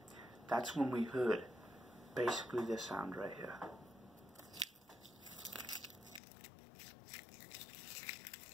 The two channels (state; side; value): drops out; right; at 6.2 s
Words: that's when we heard basically this sound right here.